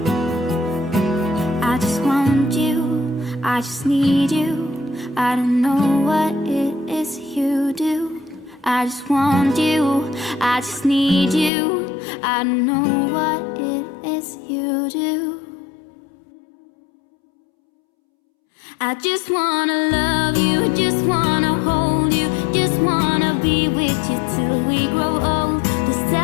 I just want you, I just need you. I don't know what it is you do. I just want you, I just need you. I don't know what it is you do. I just wanna love you, just wanna hold you, just wanna be with you till we grow old.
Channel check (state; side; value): drops out; right; at 11.5 s